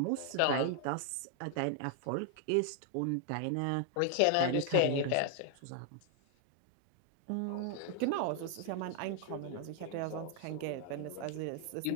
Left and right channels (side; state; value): both; different; correlation 0.00